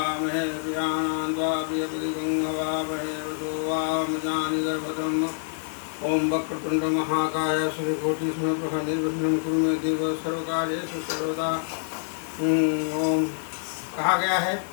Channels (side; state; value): right; silent; 61 dB below the other